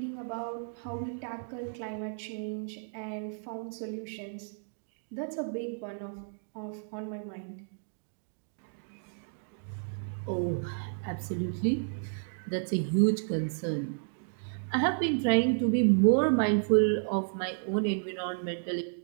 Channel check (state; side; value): silent; left; digital silence